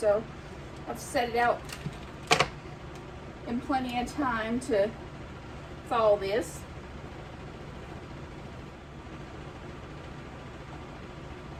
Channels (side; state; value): both; identical; correlation 1.00